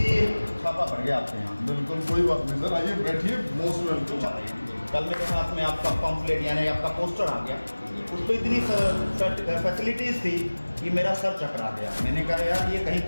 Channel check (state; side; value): inverted; both; correlation -1.00